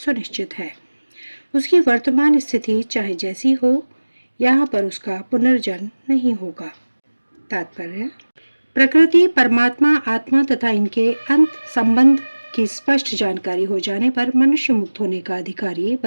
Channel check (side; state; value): both; inverted; correlation -1.00